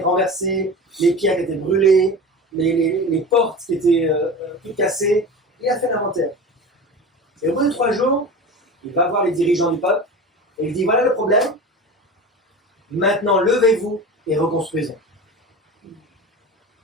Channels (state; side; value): normal; both; correlation 0.31